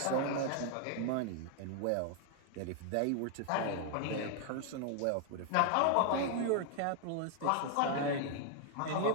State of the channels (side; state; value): both; different; correlation 0.00